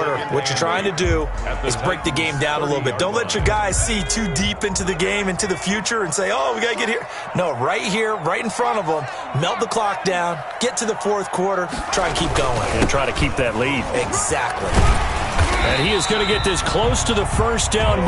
What you're trying to do is break the game down a little bit. Don't let your guys see too deep into the game, into the future, and say, oh, we got to get here. No, right here, right in front of them, melt the clock down, get to the 4th quarter, try and keep going. And try to keep that lead. Exactly. And he is going to get this close to the 1st down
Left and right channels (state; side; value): identical; both; correlation 1.00